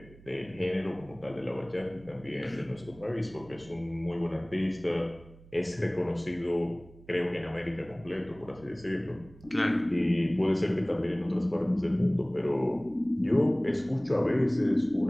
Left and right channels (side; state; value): right; noise; hum, 22 dB below the sound